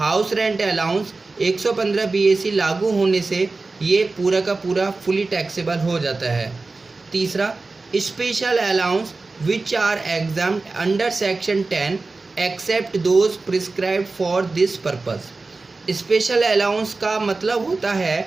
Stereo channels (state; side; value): quieter; left; 3.7 dB